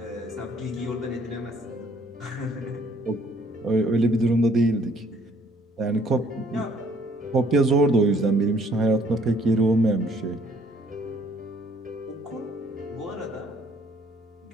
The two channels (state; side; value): normal; both; correlation 0.61